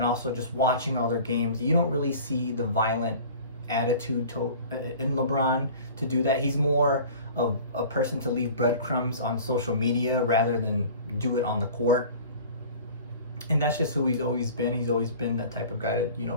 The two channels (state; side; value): inverted; both; correlation -0.43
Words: also just watching all their games, you don't really see the violent attitude in LeBron to do that. He's more of a person to leave breadcrumbs on social media rather than do it on the court. And that's just who he's always been. He's always been that type of guy